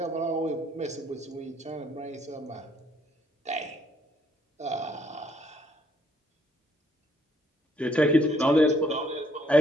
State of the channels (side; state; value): both; normal; correlation 0.68